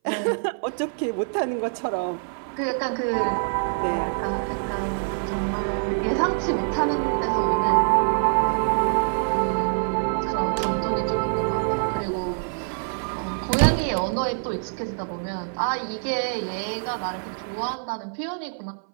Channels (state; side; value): silent; left; 59 dB below the other